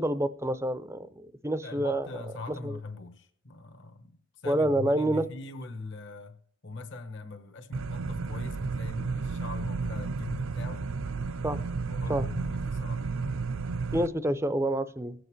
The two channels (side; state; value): both; normal; correlation 0.77